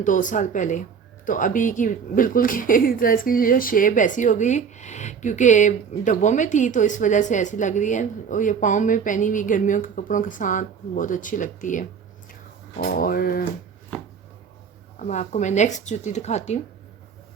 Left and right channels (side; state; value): left; quieter; 6.5 dB